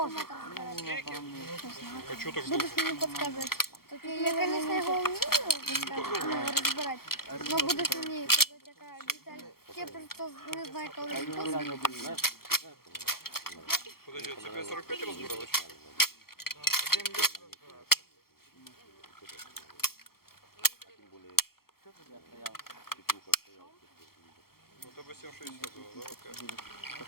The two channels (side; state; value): right; late; 0.94 ms